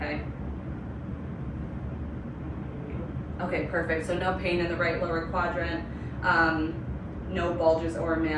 Okay, perfect. So no pain in the right lower quadrant. No bulges or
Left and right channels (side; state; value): both; identical; correlation 1.00